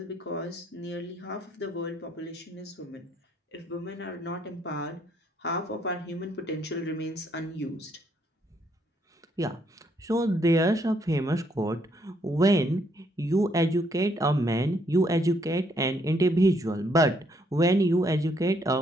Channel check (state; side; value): normal; both; correlation 0.71